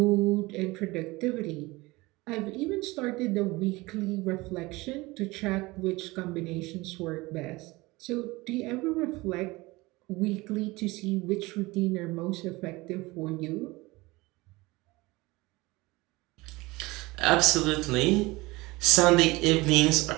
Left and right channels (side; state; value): left; quieter; 21.9 dB